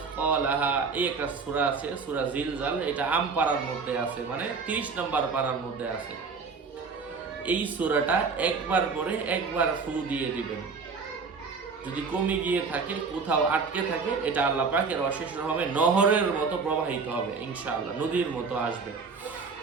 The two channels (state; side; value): quieter; left; 5.0 dB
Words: এই একটা সূরা আছে, সূরা জিলজাল। এটা আম পাড়ার মধ্যে আছে, মানে 30 নম্বর পাড়ার মধ্যে আছে। এই সূরাটা একবার পরে একবার ফু দিয়ে দিবেন। যদি কমে গিয়ে থাকে, কোথাও আটকে থাকে, এটা আল্লাহ পাকের অশেষ রহমে নহরের মতো প্রবাহিত হবে, ইনশাআল্লাহ নদীর মতো আসবে।